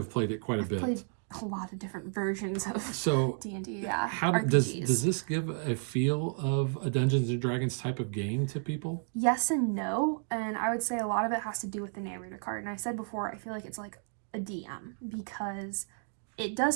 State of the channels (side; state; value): left; silent; 56 dB below the other